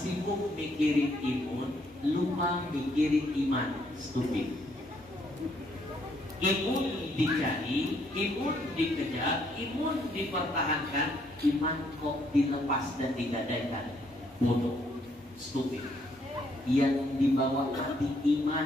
mikirin imun, lupa mikirin iman. Stupid. Imun dicari, imun dikejar, imun dipertahankan, iman kok dilepas dan digadaikan. Bodoh. Stupid. Yang dibawa hati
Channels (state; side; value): normal; both; correlation 0.70